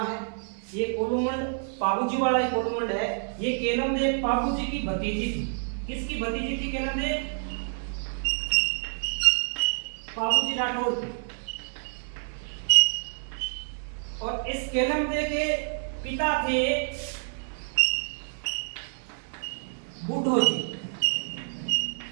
है। ये कोलूमंड पाबूजी वाला ही कोलूमंड है। ये केलम देव पाबूजी की भतीजी थी। किसकी भतीजी थी केलम देव? पाबूजी राठौड़ की। और इस केलम देव के पिता थे बूढ़ो जी।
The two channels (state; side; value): silent; left; 59 dB below the other